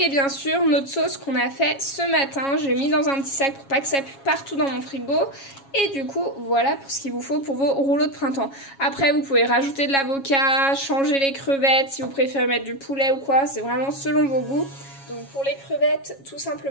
bien sûr, notre sauce qu'on a fait ce matin. Je l'ai mis dans un petit sac pour pas que ça pue partout dans mon frigo. Et du coup, voilà pour ce qu'il vous faut pour vos rouleaux de printemps. Après, vous pouvez rajouter de l'avocat, changer les crevettes si vous préférez mettre du poulet ou quoi. C'est vraiment selon vos goûts. Donc pour les crevettes, tout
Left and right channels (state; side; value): late; right; 7.3 ms